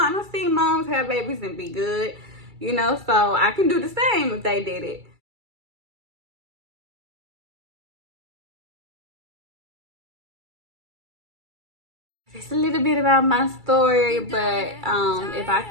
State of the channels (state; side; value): late; left; 2.3 ms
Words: don't see moms have babies and be good. You know, so I can do the same if they did it. Just a little bit about my story, but if I